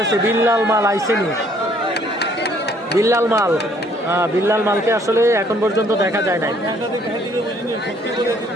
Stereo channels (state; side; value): normal; both; correlation 0.62